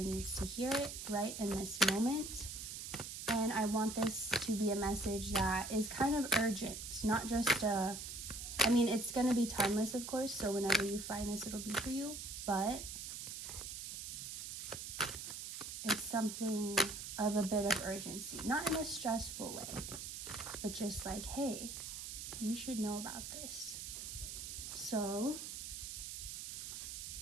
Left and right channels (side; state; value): right; noise; hiss, 7 dB below the sound